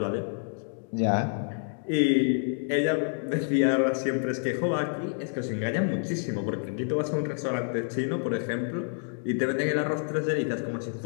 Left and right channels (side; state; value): right; silent; 59 dB below the other